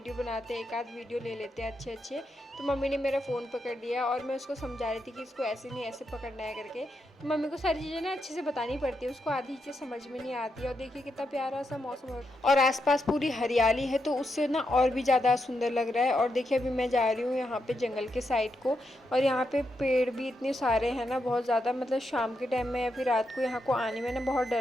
बनाते हैं, एक आध वीडियो ले लेते हैं अच्छे। तो मम्मी ने मेरा फ़ोन पकड़ लिया और मैं उसको समझा रही थी कि इसको ऐसे नहीं ऐसे पकड़ना है करके। तो मम्मी को सारी चीज़ें ना अच्छे से बतानी पड़ती है, उसको आधी चीज़ें समझ में नहीं आती है। और देखिए कितना प्यारा सा मौसम है और आसपास पूरी हरियाली है, तो उससे ना और भी ज़्यादा सुंदर लग रहा है। और देखिए अभी मैं जा रही हूँ यहाँ पे जंगल के साइड को, और यहाँ पे पेड़ भी इतने सारे हैं ना, बहुत ज़्यादा। मतलब शाम के टाइम में या फिर रात को यहाँ को आने में ना बहुत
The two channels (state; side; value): normal; both; correlation 0.83